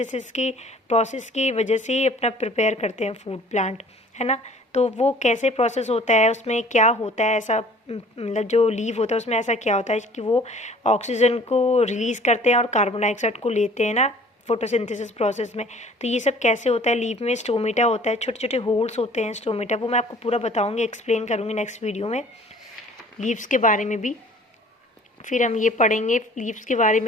की प्रोसेस की वजह से ही अपना प्रिपेयर करते हैं फूड प्लांट, है ना। तो वो कैसे प्रोसेस होता है, उसमें क्या होता है ऐसा, मतलब जो लीव होता है उसमें ऐसा क्या होता है कि वो ऑक्सीजन को रिलीज़ करते हैं और कार्बन डाइऑक्साइड को लेते हैं ना फोटोसिंथेसिस प्रोसेस में। तो ये सब कैसे होता है, लीव में स्टोमेटा होता है, छोटे छोटे होल्स होते हैं स्टोमेटा, वो मैं आपको पूरा बताऊंगी, एक्सप्लेन करूंगी नेक्स्ट वीडियो में लीव्स के बारे में भी। फिर हम ये पढ़ेंगे लीव्स के बारे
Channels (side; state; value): both; normal; correlation 0.50